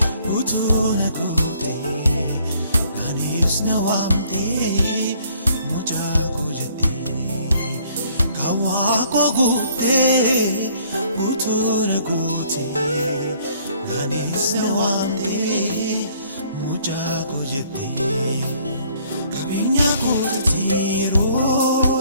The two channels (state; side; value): inverted; both; correlation -0.61